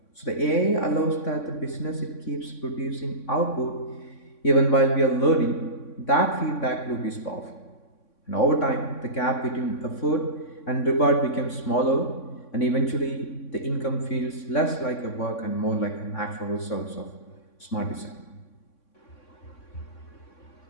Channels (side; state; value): right; late; 3.6 ms